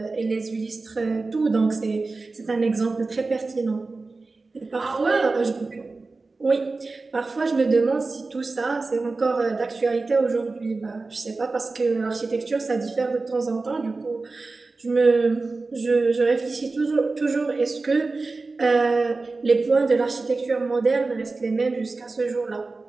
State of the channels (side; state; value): left; quieter; 3.7 dB